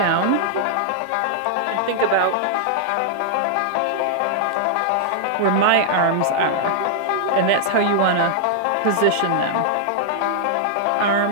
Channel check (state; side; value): different; both; correlation -0.01